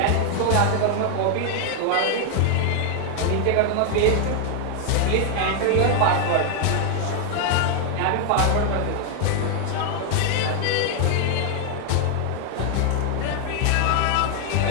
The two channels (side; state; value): both; different; correlation 0.00